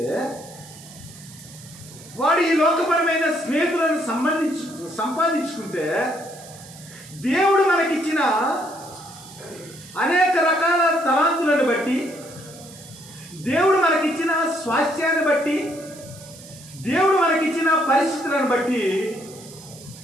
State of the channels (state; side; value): noise; right; hiss, 19 dB below the sound